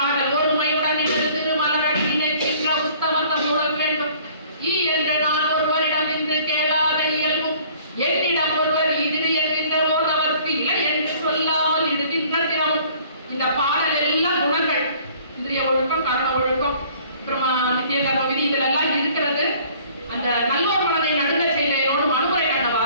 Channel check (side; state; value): both; inverted; correlation -0.54